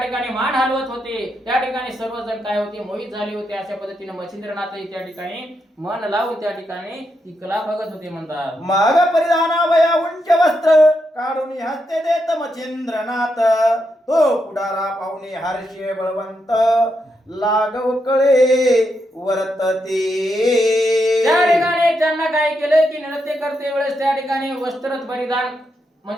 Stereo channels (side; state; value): both; normal; correlation 0.82